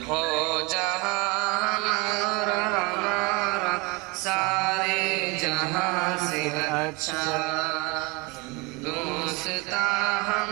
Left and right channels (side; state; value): left; quieter; 26.5 dB